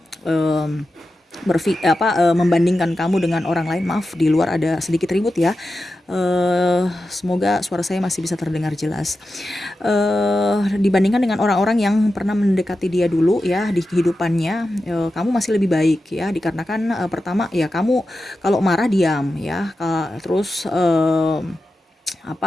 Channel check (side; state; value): both; normal; correlation 0.91